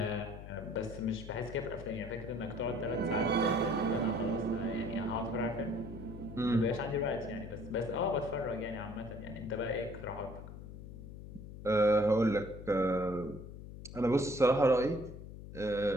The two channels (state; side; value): noise; left; hum, 12 dB below the sound